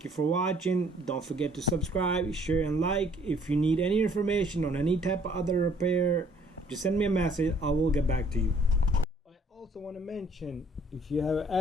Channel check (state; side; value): normal; both; correlation 0.60